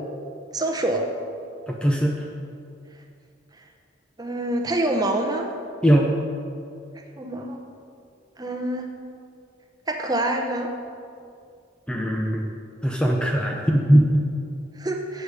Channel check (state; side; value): normal; both; correlation 0.76